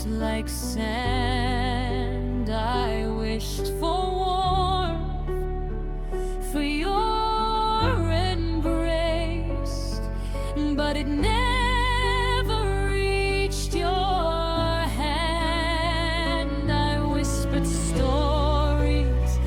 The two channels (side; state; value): both; identical; correlation 1.00